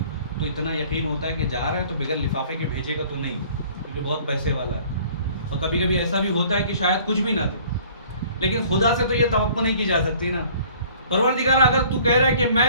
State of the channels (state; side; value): inverted; both; correlation -0.53